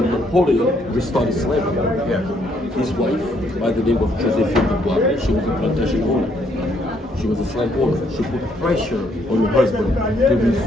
Napoleon restored slavery. His wife, by the name of Josephine Dubois, she was a plantation owner. She was a slave owner. She put pressure on her husband to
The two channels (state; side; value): normal; both; correlation 0.70